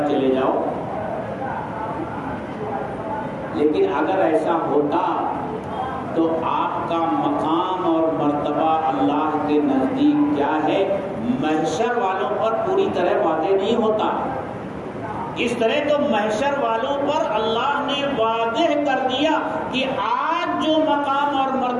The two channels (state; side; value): identical; both; correlation 1.00